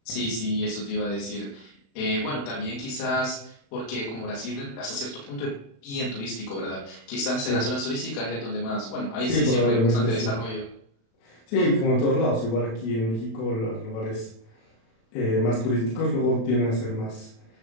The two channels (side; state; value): right; late; 36 ms